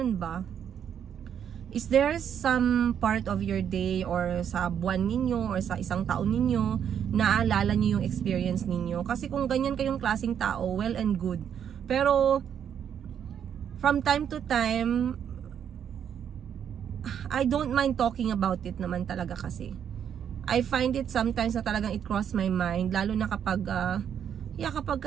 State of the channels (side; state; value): left; quieter; 8.6 dB